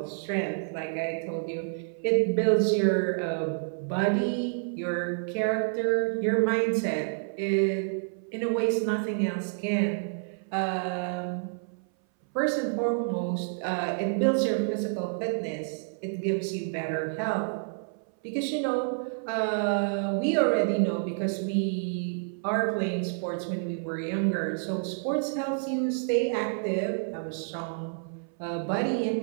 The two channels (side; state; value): left; silent; 59 dB below the other